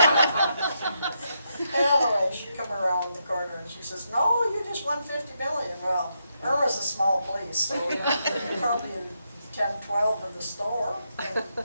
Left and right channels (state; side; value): inverted; both; correlation -0.81